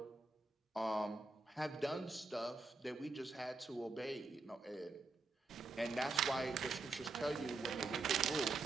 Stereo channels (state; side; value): quieter; left; 3.5 dB